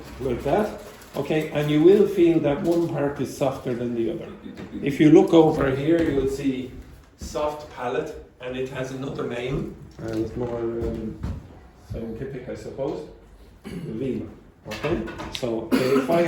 like that. Okay, and you will feel that one part is softer than the other. If you look over here, you'll see soft palate, and it has another name, and it's more scientific, I suppose. Veal. Okay, so if I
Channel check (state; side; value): identical; both; correlation 1.00